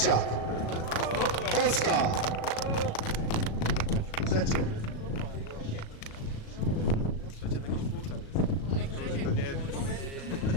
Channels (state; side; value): late; right; 37 ms